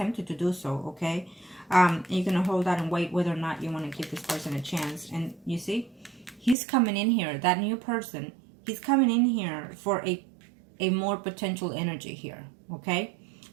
to do so, okay? You're going to hold out and wait whether or not you want to give this person a chance. And you see, he's coming in here, that new person, he's coming in here for a more potential energy here, okay?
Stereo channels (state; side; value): drops out; left; at 6.6 s